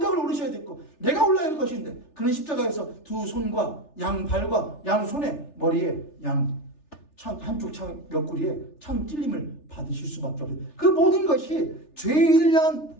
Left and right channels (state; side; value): late; right; 3.4 ms